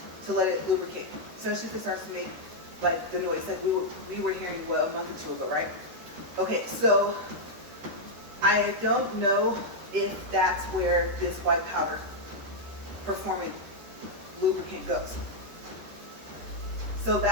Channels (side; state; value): left; late; 13 ms